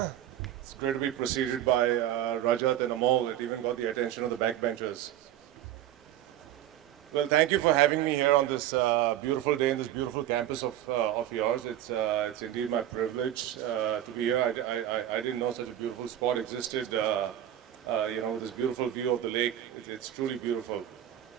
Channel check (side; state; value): left; quieter; 12.0 dB